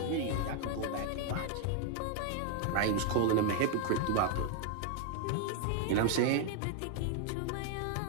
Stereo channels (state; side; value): different; both; correlation 0.00